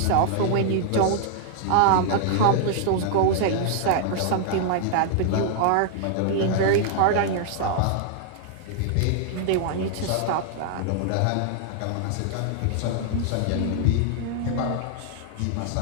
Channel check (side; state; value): both; different; correlation -0.01